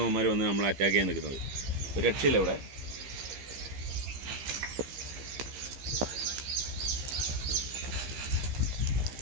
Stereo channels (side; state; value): left; late; 15 ms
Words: ഇവന്മാർ വന്ന് നമ്മളെ അറ്റാക്ക് ചെയ്യാൻ നിൽക്കുന്നത്. ഒരു രക്ഷയില്ല ഇവിടെ.